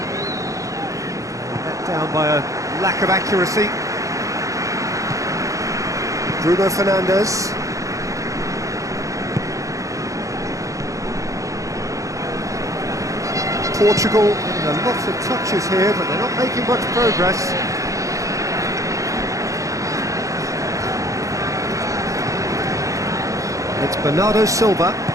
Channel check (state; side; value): late; left; 0.16 ms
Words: Let down by a lack of accuracy. Bruno Fernandes. Portugal getting lots of touches here, but they're not making much progress. It's Bernardo Silva.